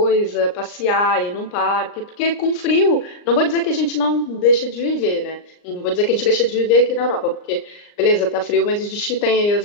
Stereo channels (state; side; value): late; right; 39 ms